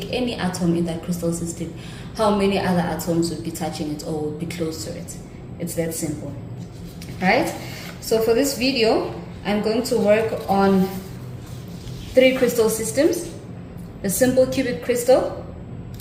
any atom in that crystal system, how many other atoms would be touching it or would be close to it? It's that simple, right? So for this video, I'm going to work on 3 crystal systems: the simple cubic crystal,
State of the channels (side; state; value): both; identical; correlation 1.00